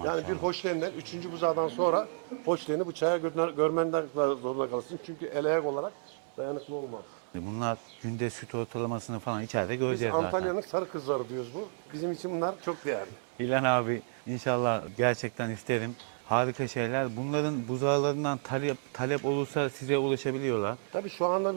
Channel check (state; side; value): silent; left; 57 dB below the other